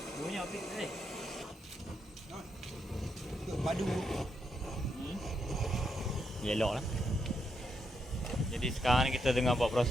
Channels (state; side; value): normal; both; correlation 0.80